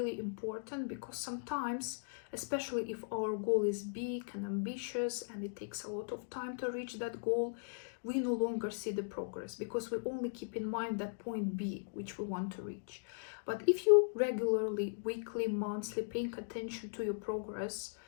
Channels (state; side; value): silent; right; digital silence